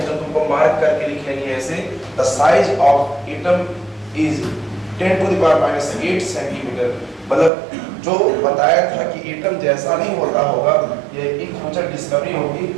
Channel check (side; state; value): left; drops out; at 7.5 s